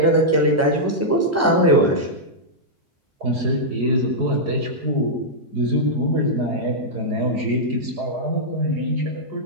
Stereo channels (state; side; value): normal; both; correlation -0.08